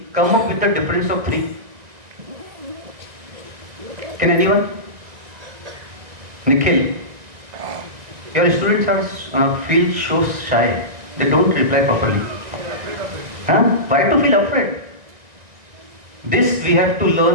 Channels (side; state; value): left; late; 1.9 ms